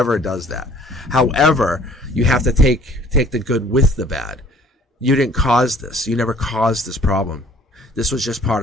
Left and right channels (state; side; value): normal; both; correlation 0.54